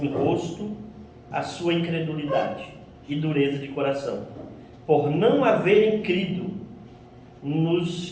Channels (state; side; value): identical; both; correlation 1.00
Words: rosto a sua incredulidade e dureza de coração, por não haverem crido nos